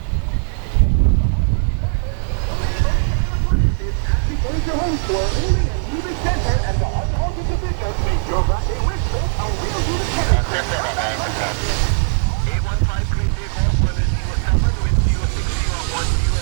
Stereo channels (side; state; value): left; silent; 61 dB below the other